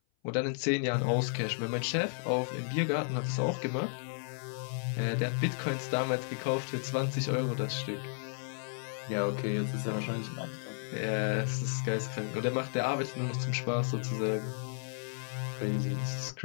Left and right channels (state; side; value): silent; right; 56 dB below the other